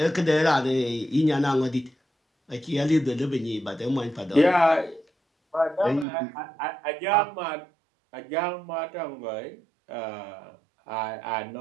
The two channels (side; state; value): left; drops out; at 6.1 s